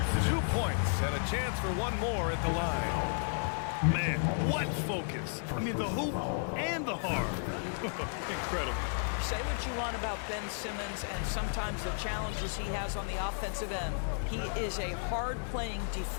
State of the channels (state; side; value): silent; right; 56 dB below the other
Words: 2 points and a chance for one more at the line. Man, what focus. I mean, the hoop and the harm. Incredible. Say what you want about Ben Simmons and sometimes the challenges he has on the offensive end. He is a hard-playing